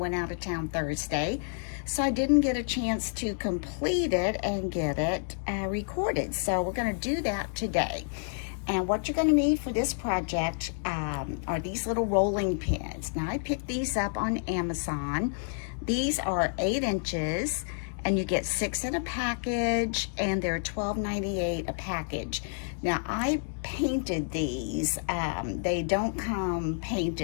out of town Thursday. So I didn't get a chance to complete it and get it recorded. So we're going to do that today. And what you're going to need for this project are these little rolling pins. Now I picked these up on Amazon. These are 8 inches and you get 6 in a package and they're $12.98 a package. Now I painted these. They don't come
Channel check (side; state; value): right; silent; digital silence